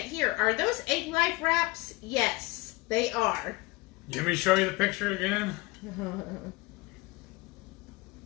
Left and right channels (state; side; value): quieter; right; 22.9 dB